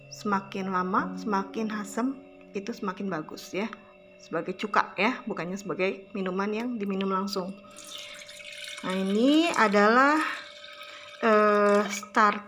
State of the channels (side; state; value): both; identical; correlation 1.00